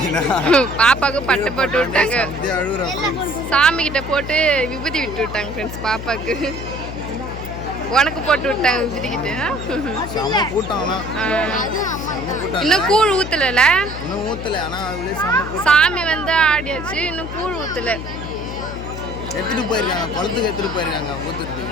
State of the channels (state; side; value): noise; left; hum, 9 dB below the sound